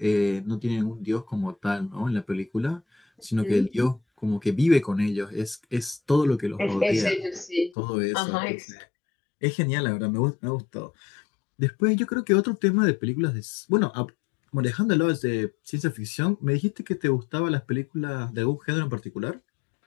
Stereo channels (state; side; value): drops out; right; at 7.8 s